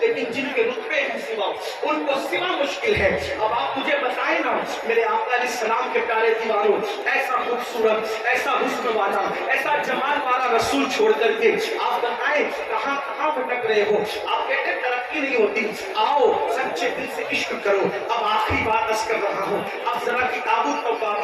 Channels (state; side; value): identical; both; correlation 1.00